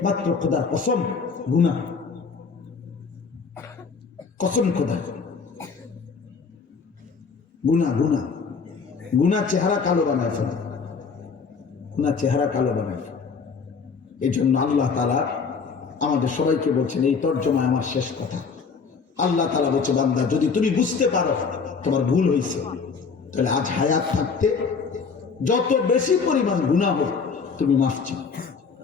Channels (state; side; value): quieter; right; 5.3 dB